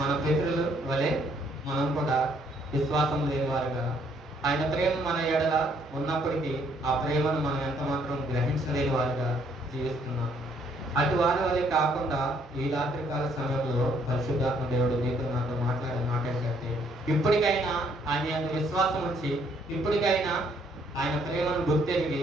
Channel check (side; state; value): both; normal; correlation 0.67